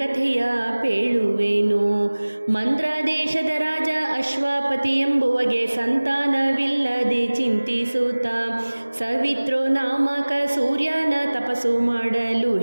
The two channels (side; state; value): both; inverted; correlation -1.00